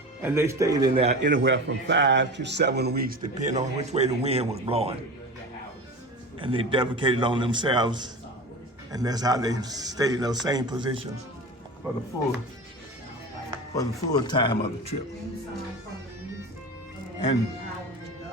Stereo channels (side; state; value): both; normal; correlation 0.31